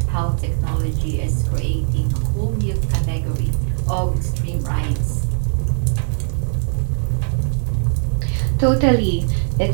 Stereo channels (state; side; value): silent; left; digital silence